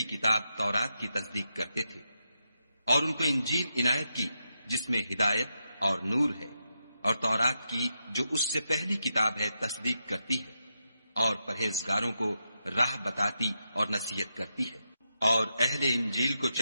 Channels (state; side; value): inverted; both; correlation -0.86